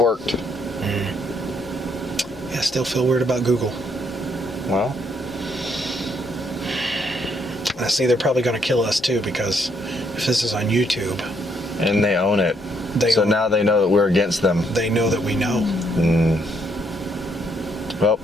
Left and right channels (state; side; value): normal; both; correlation 0.72